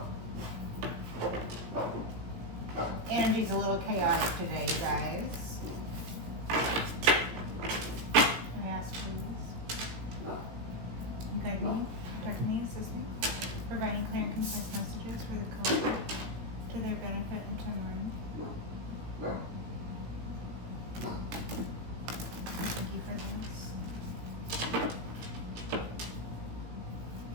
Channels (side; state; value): left; late; 17 ms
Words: Energy's a little chaotic today, you guys. I ask, please. Guide me, protect me, assist me, providing clear and concise messages for the collective to their benefit and to mine. Thank you for this.